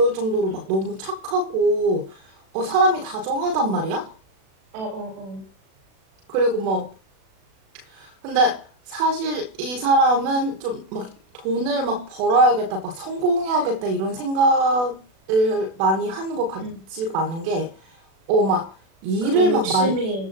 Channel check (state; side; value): late; left; 36 ms